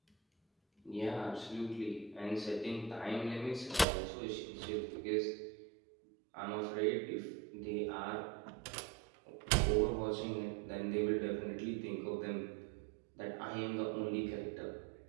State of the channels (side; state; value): left; drops out; at 3.9 s